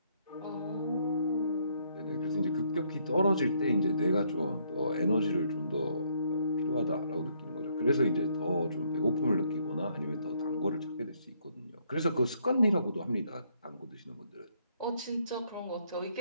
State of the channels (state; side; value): inverted; both; correlation -0.70